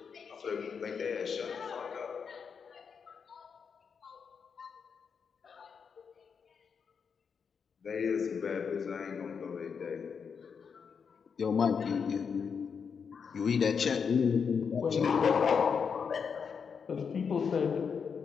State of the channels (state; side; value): quieter; right; 6.3 dB